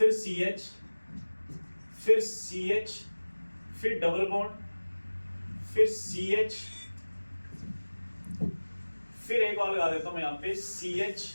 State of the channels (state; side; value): inverted; both; correlation -1.00